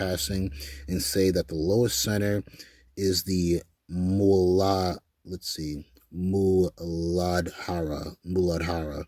and say that the lowest center is the Muladhara,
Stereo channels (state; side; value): identical; both; correlation 1.00